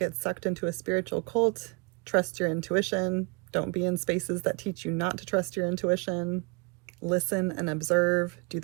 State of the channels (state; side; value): quieter; left; 32.2 dB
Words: sucked into a spiritual cult? Trust your intuition. Don't be in spaces that teach you not to trust your intuition. Listen and observe. Do